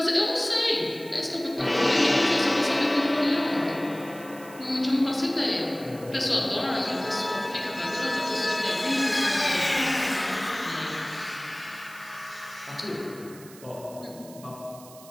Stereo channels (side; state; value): right; noise; hiss, 20 dB below the sound